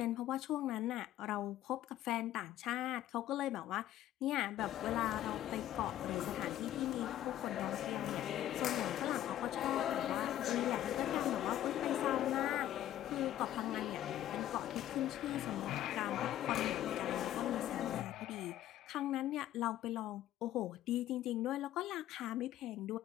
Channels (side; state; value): right; quieter; 12.7 dB